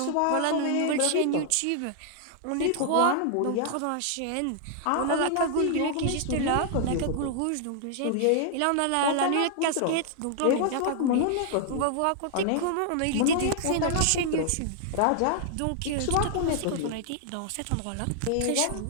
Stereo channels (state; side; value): different; both; correlation -0.01